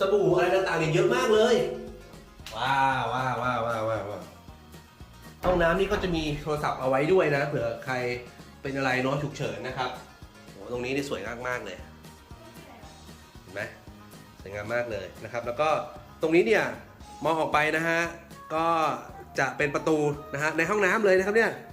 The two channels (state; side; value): identical; both; correlation 1.00